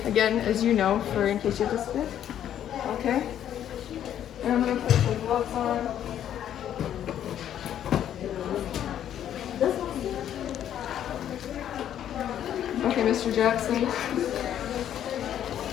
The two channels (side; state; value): right; quieter; 10.4 dB